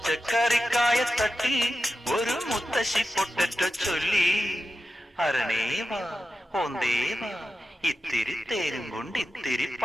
ഒരു മുത്തശ്ശി പൊട്ടറ്റോ ചൊല്ലി. അരണേവാ ഓന്തേവാ ഇത്തിരി തേരും കൊണ്ട് ഇത്തിരി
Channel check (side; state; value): both; normal; correlation 0.92